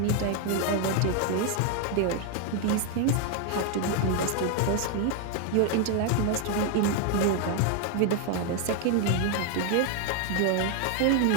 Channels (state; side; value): different; both; correlation 0.00